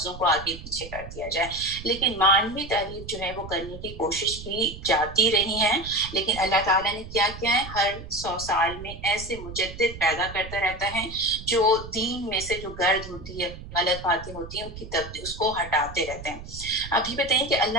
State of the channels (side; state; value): right; noise; rumble, 12 dB below the sound